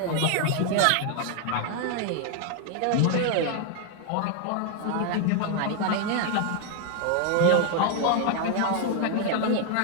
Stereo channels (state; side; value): different; both; correlation 0.00